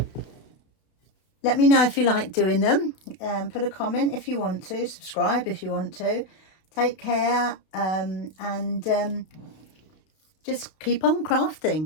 Let me know if you like doing them. Put a comment if you want to. Subscribe if you want to. Take care, and just keep on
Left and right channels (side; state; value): right; late; 32 ms